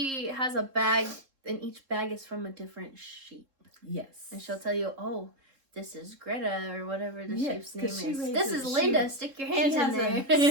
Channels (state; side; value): late; left; 3.7 ms